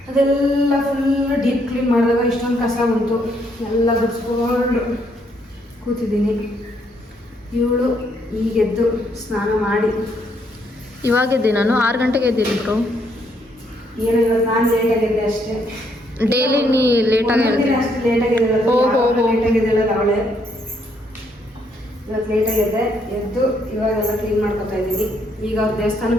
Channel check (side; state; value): both; normal; correlation 0.72